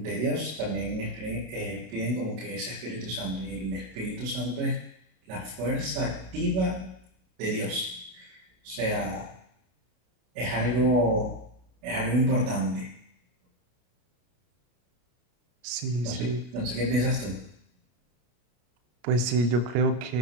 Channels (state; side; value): late; left; 33 ms